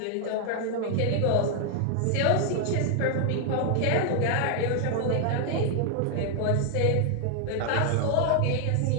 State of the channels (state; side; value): different; both; correlation 0.00